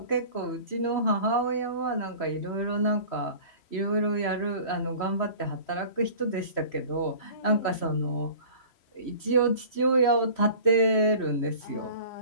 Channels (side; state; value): right; late; 3.0 ms